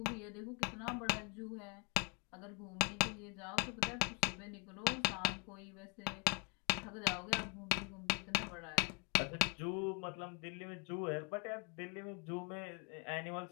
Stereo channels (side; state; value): right; quieter; 33.0 dB